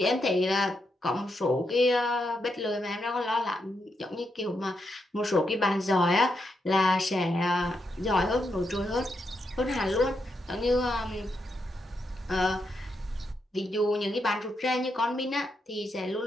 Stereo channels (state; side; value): normal; both; correlation 0.82